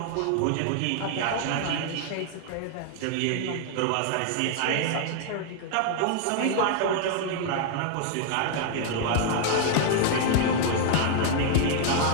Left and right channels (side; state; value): both; different; correlation 0.00